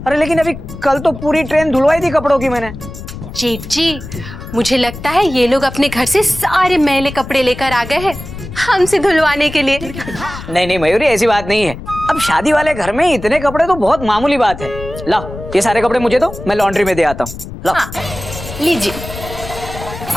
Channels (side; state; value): left; noise; rumble, 12 dB below the sound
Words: अरे लेकिन अभी कल तो पूरी ट्रेन धुलवाई थी कपड़ों की मैंने। जेठ जी, मुझे लगता है ये लोग अपने घर से सारे मैले कपड़े लेकर आ गए हैं हमसे धुलवाने के लिए। नहीं मयूरी, ऐसी बात नहीं है। अब शादी वाले घर में इतने कपड़े तो बहुत मामूली बात है। लाओ, ये सारे कपड़े मुझे दो, मैं लॉन्ड्री में दे आता हूँ। लाओ। हाँ, लीजिए।